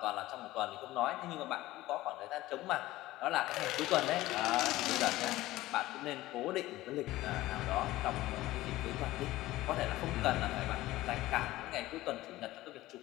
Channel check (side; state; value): right; quieter; 17.0 dB